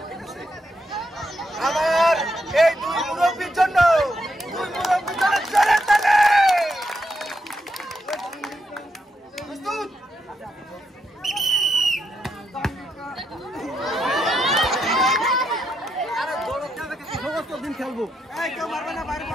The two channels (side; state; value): both; normal; correlation 0.81